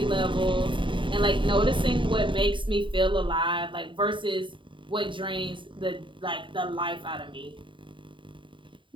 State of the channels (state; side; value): late; left; 0.24 ms